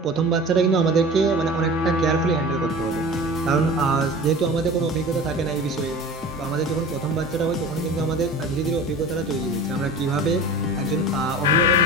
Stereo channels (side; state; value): both; normal; correlation 0.37